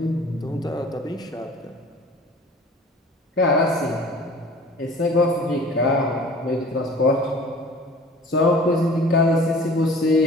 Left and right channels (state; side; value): normal; both; correlation 0.46